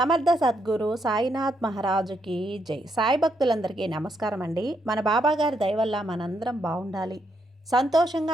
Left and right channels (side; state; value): both; normal; correlation 0.77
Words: సద్గురు సాయినాథ్ మహారాజుకి జై. సాయి భక్తులందరికీ నమస్కారం అండి. మన బాబాగారి దయ వల్ల మనందరం బాగుండాలి,